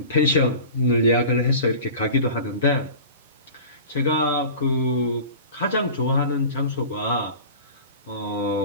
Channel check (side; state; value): both; inverted; correlation -0.39